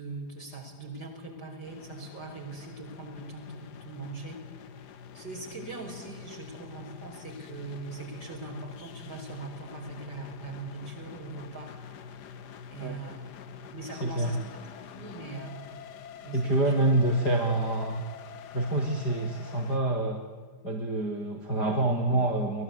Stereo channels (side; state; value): right; late; 5.0 ms